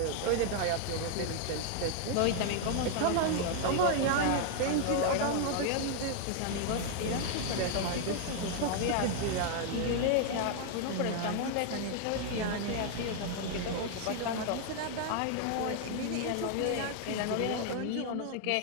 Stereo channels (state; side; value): different; both; correlation 0.00